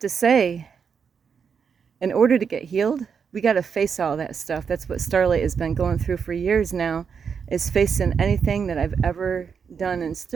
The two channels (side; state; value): left; quieter; 6.5 dB